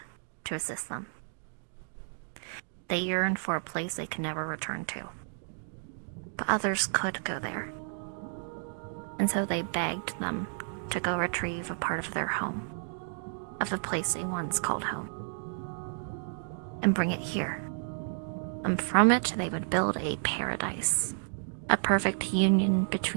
to assist them. They yearned for a place they could never return to. But others could go there. And so they begged them to go retrieve a part of their home, of the place they once called home, and bring it here. And from it they would build a paradise, a perfect union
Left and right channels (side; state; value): left; silent; digital silence